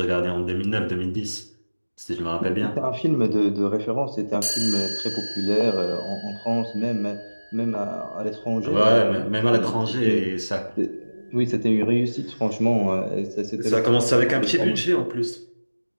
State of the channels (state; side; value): inverted; both; correlation -1.00